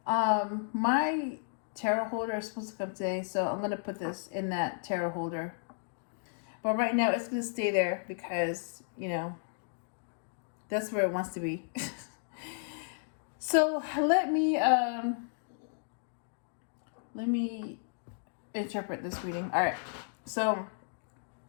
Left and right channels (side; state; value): right; silent; digital silence